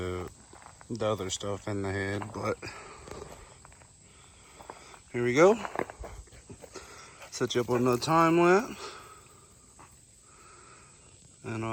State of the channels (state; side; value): identical; both; correlation 1.00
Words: other stuff in the head, but here we go. Set you up with another time lapse, and